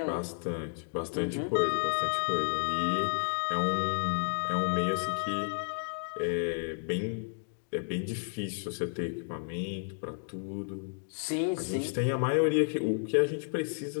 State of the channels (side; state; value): right; silent; digital silence